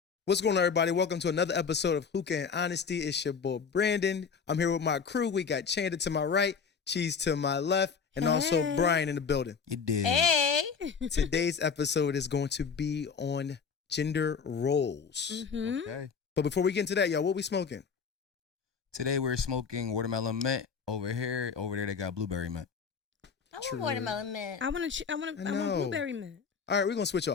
What's going on, everybody? Welcome to another episode of Hookah and Honesty. It's your boy, Brandon. I'm here with my crew. We got Candid to my right, Cheese to my left, and also Brian in the building. You did. Hey. Today's episode is going to be on gender roles. Mm-hmm. Okay. But before we get into that, y'all, what we smoking? Today we're smoking watermelon mint over here. Over there they got blueberry mint. I want watermelon mint. I want blueberry mint. All right, we're going to switch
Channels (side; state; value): right; quieter; 5.9 dB